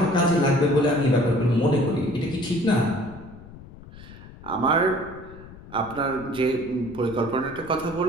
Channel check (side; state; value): left; noise; rumble, 18 dB below the sound